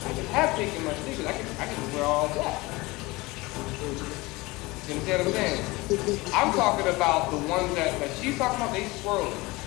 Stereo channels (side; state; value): right; quieter; 22.3 dB